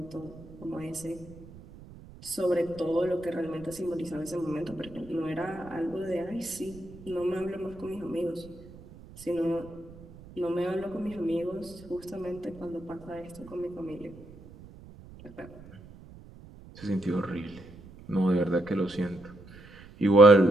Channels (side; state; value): right; noise; rumble, 19 dB below the sound